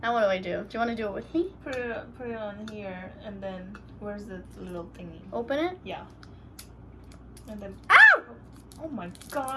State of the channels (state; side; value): identical; both; correlation 1.00